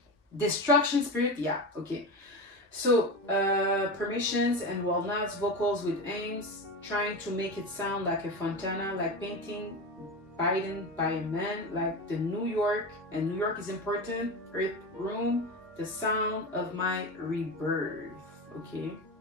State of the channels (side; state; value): both; normal; correlation 0.23